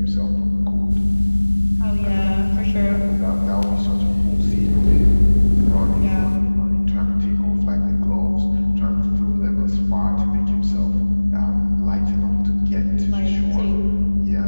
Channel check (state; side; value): inverted; both; correlation -1.00